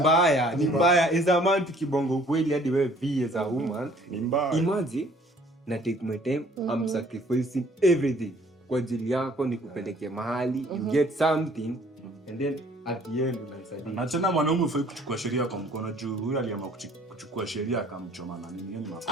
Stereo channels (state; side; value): normal; both; correlation 0.57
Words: Ni mbaya as a man tukibongo ukweli hadi wewe be as a woman Ni mbaya. imagine na take my time I'm sacrificing everything kwa ajili yako nikupeleke mahali you get something and then at the end unaisadia. Na tena mwanaume ufai kuchukua sheria kwa mkono juu huyu aliamua kuchukua sheria akamchoma na nini? Yaani